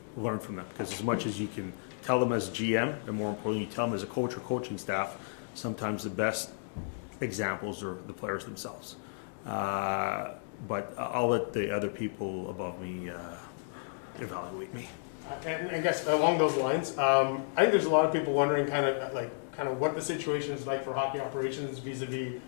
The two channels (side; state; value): right; silent; digital silence